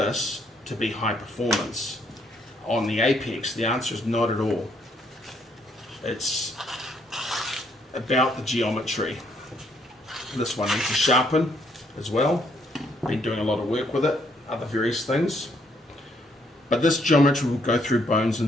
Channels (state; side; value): normal; both; correlation 0.70